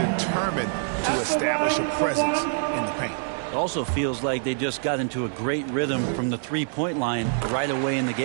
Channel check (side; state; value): left; silent; digital silence